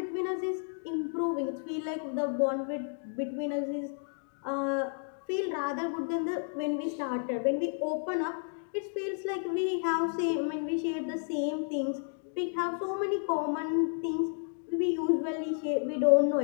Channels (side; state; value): right; silent; digital silence